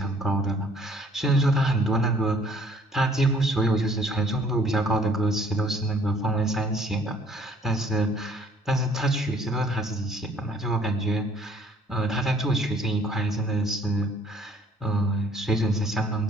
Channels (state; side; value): normal; both; correlation 0.59